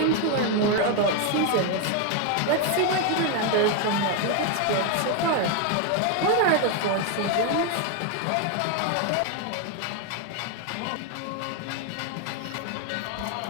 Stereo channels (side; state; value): both; different; correlation 0.01